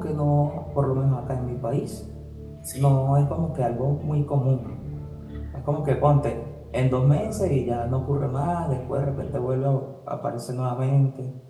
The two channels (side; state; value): both; identical; correlation 1.00